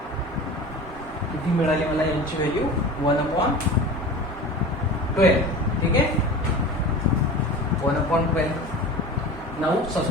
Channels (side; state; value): both; normal; correlation 0.35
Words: किती मिळाली मला यांची व्हॅल्यू 1/12. ठीक आहे 1/12. Now